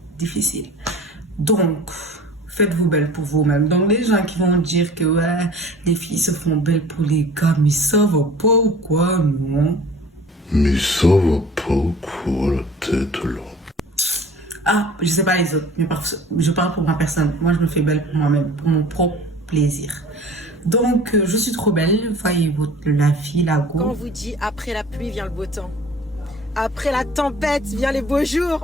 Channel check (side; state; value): both; normal; correlation 0.45